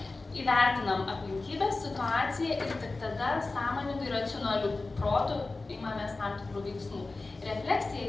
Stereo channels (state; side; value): quieter; right; 3.5 dB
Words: įvertinam aplinkybės, situaciją ir tik tada sąmoningai racionalių protų imamės tam tikrų veiksmų.